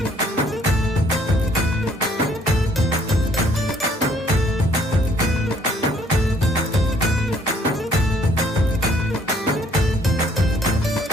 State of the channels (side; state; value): both; normal; correlation 0.62